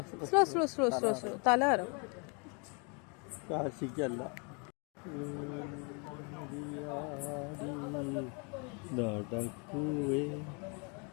Slow slow slow slow slow. തലകറും.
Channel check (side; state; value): right; quieter; 34.8 dB